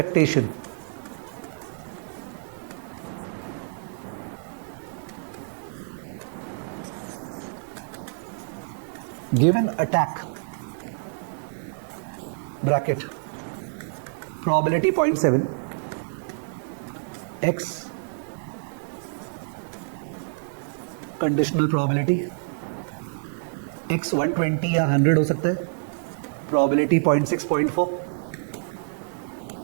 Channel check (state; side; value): silent; left; 60 dB below the other